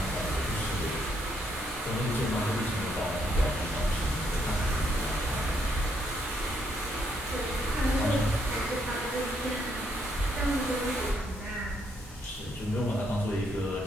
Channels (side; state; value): both; normal; correlation 0.73